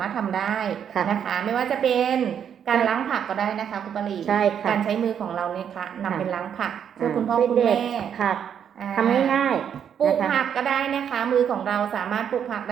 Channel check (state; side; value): quieter; left; 8.4 dB